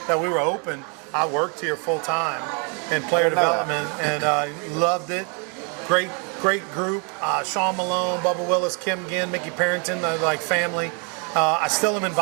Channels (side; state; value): left; quieter; 36.1 dB